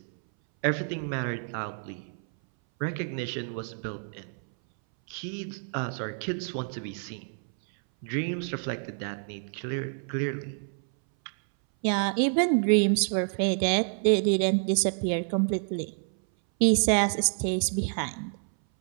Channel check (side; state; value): left; silent; 59 dB below the other